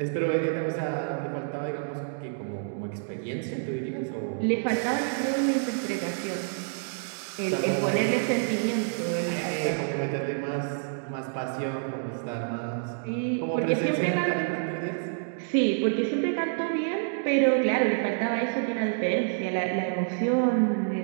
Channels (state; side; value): silent; left; digital silence